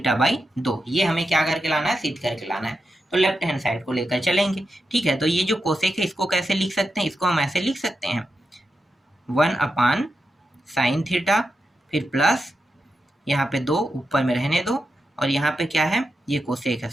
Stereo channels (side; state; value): both; normal; correlation 0.88